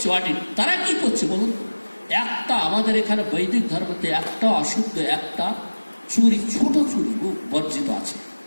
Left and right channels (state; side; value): inverted; both; correlation -1.00